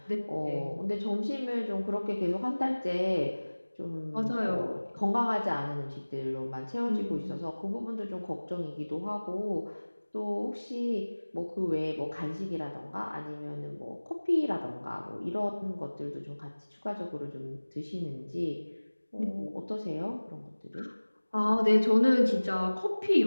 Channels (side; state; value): both; inverted; correlation -1.00